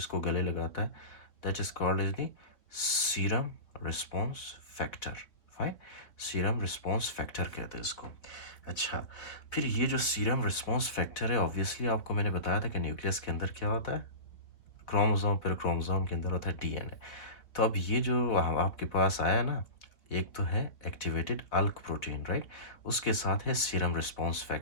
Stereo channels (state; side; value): late; right; 3.5 ms